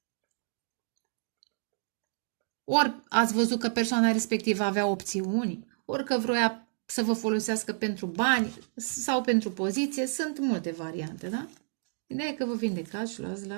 Ori ați văzut că persoana respectivă avea opțiuni, ori că vroia să vă folosească pentru bani sau pentru poziție. Sunt multe variante, da? Ideea e că vă vindecați și luați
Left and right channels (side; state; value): left; silent; digital silence